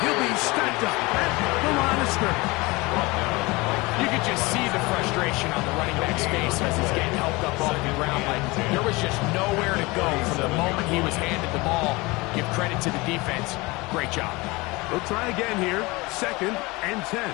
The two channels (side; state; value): right; quieter; 23.6 dB